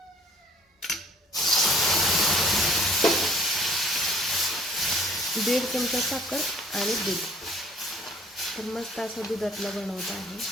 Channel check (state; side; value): normal; both; correlation 0.57